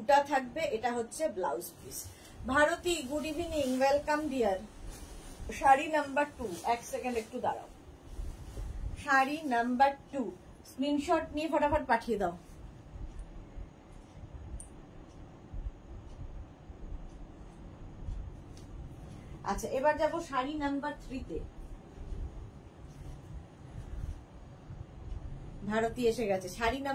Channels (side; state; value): both; identical; correlation 1.00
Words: থাকবে, এটা হচ্ছে blouse piece. Bharati good evening, welcome dear. Sari number 2, এক সেকেন্ড একটু দাঁড়াও। শাড়ি নাম্বার 2 স্ক্রিনশট নিয়ে ফটাফট পাঠিয়ে দাও। আচ্ছা এবার যাব শাড়ি নাম্বার 3 তে। ভারতী এসে গেছে। শাড়ি